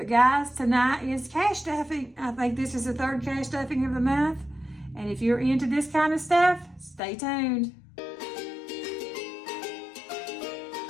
guys, tonight is cash stuffing. I think this is the 3rd cash stuffing of the month. And if you're into this kind of stuff, stay tuned.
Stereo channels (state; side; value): drops out; right; at 7.0 s